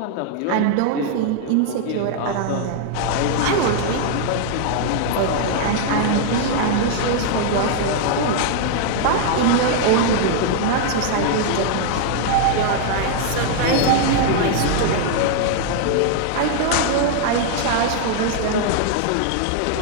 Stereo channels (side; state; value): both; different; correlation 0.00